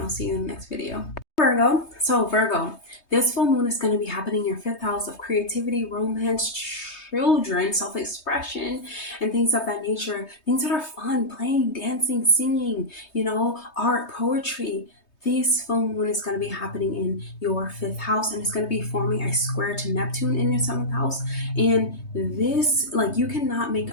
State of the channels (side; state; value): right; late; 3.2 ms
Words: I'll see you in the next video. Virgo. So Virgo, this full moon is going to be happening in your 5th house of creativity, romance, children, self-expression, and things of that nature. Things that are fun, playing, dancing, singing, you know, art, poetry. This full moon is going to be happening in your 5th house, and it's going to be forming a square to Neptune in your 7th house. And this, like, you cannot make